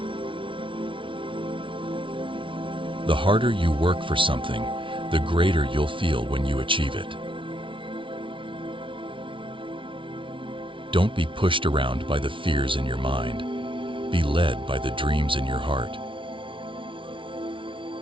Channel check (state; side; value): late; left; 0.25 ms